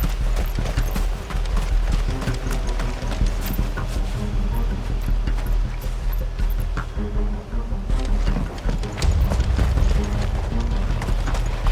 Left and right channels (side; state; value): both; identical; correlation 1.00